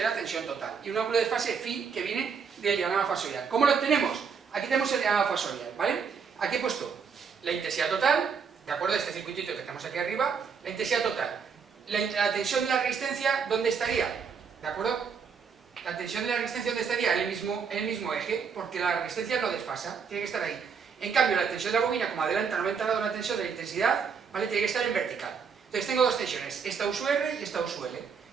la tensión total. Y un ángulo de fase phi que viene del diagrama fasorial. ¿Cómo lo obtenemos? Aquí tenemos el diagrama fasorial, ¿vale? Aquí he puesto la intensidad total, de acuerdo a este circuitito que tenemos aquí arriba, la intensidad total. La tensión de la resistencia, ¿dónde estaría? ¿De acuerdo? La tensión de la resistencia, ¿dónde estaría? En el mismo eje, porque la resistencia no desfasa, tiene que estar ahí. En cambio, la tensión de la bobina, como adelanta 90 grados la tensión de la intensidad, ¿vale? Tiene que estar en vertical. Entonces tengo dos tensiones, esta U sub R y esta U sub L.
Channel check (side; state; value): left; quieter; 6.1 dB